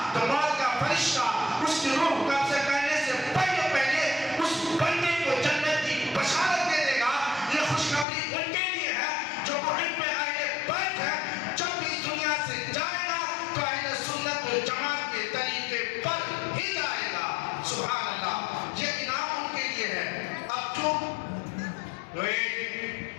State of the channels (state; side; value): drops out; right; at 8.1 s